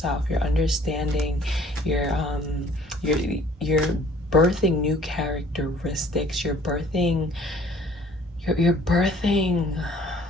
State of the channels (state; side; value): normal; both; correlation 0.55